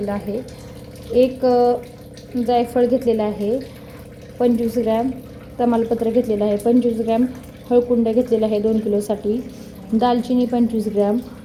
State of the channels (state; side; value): identical; both; correlation 1.00